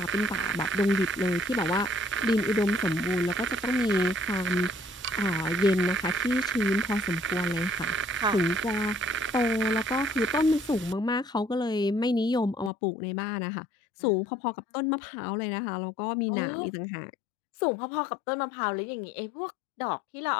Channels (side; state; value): right; drops out; at 12.7 s